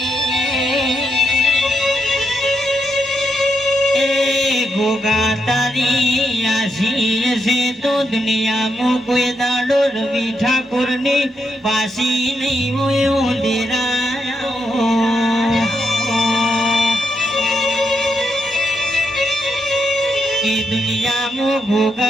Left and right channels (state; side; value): normal; both; correlation 0.81